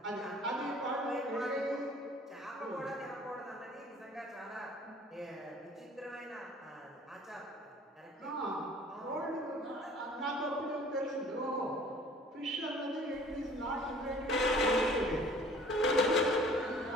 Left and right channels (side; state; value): both; normal; correlation 0.51